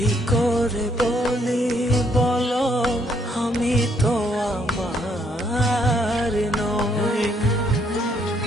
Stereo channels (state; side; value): normal; both; correlation 0.70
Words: করে বলি বলো আমি তো আমার নই।